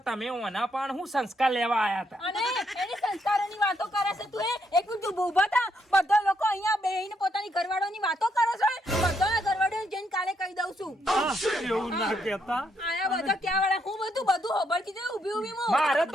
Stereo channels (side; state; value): both; normal; correlation 0.76